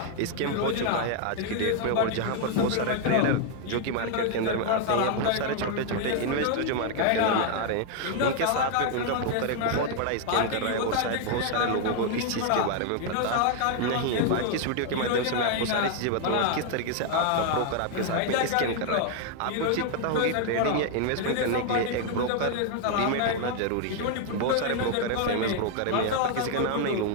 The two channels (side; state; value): both; different; correlation 0.00